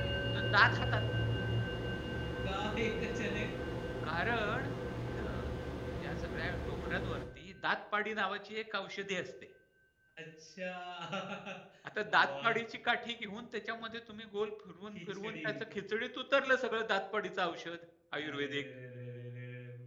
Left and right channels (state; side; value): identical; both; correlation 1.00